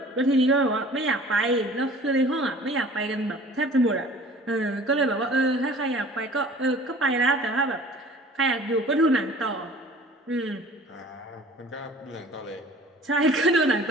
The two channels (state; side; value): normal; both; correlation 0.47